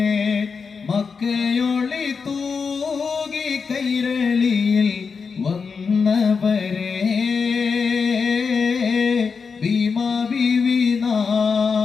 മക്കയൊളി തൂകി കൈരളിയിൽ വന്നവരെ, ഭീമാ ബീവി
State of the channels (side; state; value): right; quieter; 5.4 dB